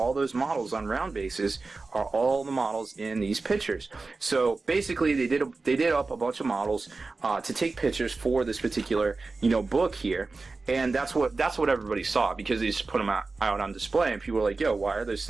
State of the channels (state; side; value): quieter; left; 3.8 dB